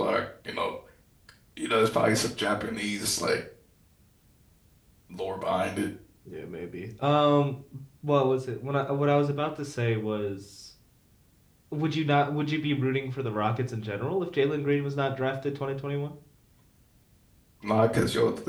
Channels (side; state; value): both; identical; correlation 1.00